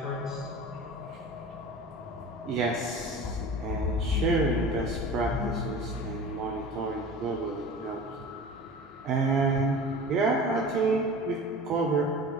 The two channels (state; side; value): normal; both; correlation 0.37